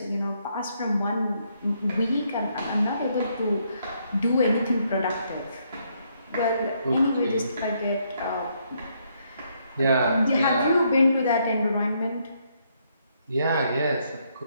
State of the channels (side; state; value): both; inverted; correlation -0.73